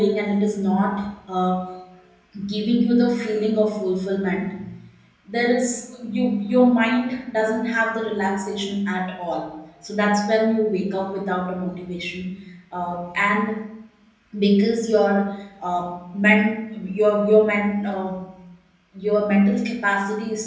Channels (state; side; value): identical; both; correlation 1.00